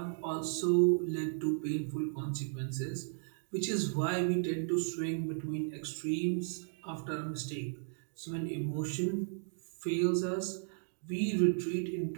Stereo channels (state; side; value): silent; left; digital silence